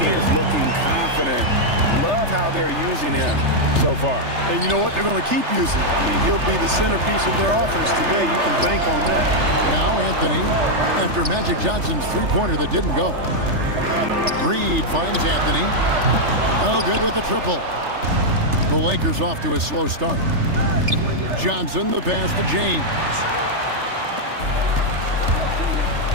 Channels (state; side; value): late; left; 3.3 ms